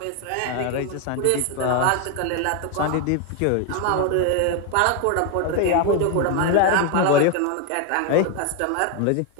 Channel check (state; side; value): different; both; correlation 0.01